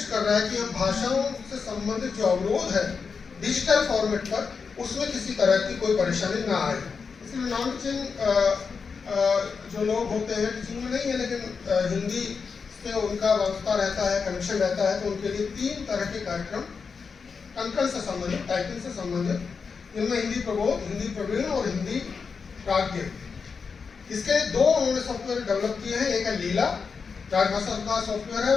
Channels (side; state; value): right; quieter; 5.4 dB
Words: कर रहा है कि हम भाषाओं से संबंधित जो अवरोध है डिजिटल फॉर्मेट पर, उसमें किसी तरह की कोई परेशानी ना आए। इसलिए नॉन टीचिंग जो लोग होते हैं, टीचिंग में नहीं है लेकिन हिंदी से उनका वास्ता रहता है, कनेक्शन रहता है, तो उनके लिए 3 तरह के कार्यक्रम कंकण से संबंधित, टाइपिंग से संबंधित, जिनमें हिंदी प्रबोध, हिंदी प्रवीण और हिंदी प्राज्ञ, इसके 2 उन्होंने सॉफ्टवेयर डेवलप किए हैं। एक है लीला, राजभाषा का सॉफ्टवेयर है,